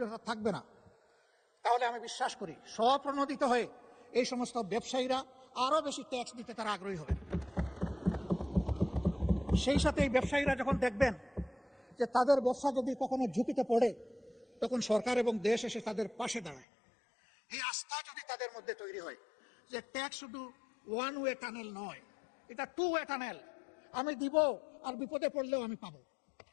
থাকবে না, তাহলে আমি বিশ্বাস করি স্বপ্রণোদিত হয়ে এই সমস্ত ব্যবসায়ীরা আরো বেশি ট্যাক্স দিতে তারা আগ্রহী হবেন। সেই সাথে এই ব্যবসায়ীরা যখন দেখবেন যে তাদের ব্যবসা যদি কখনো ঝুঁকিতে পড়ে, তখন সরকার এবং দেশ এসে তাদের পাশে দাঁড়ায়। এই আস্থা যদি তাদের মধ্যে তৈরি হয় যে ট্যাক্স শুধু ওয়ান ওয়ে টানেল নয়, এটা 2 ওয়ে টানেল, আমি দিব আর বিপদে পড়লেও আমি পাবো,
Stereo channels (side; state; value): right; drops out; at 16.7 s